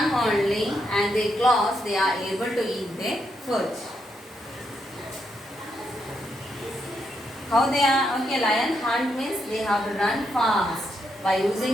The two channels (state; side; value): normal; both; correlation 0.80